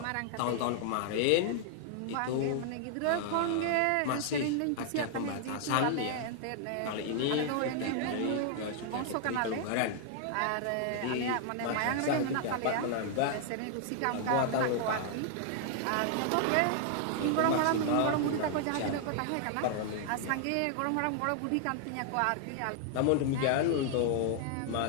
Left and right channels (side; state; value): both; different; correlation 0.00